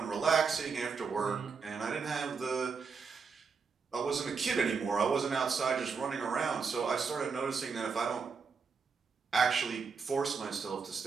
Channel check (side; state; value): left; quieter; 5.4 dB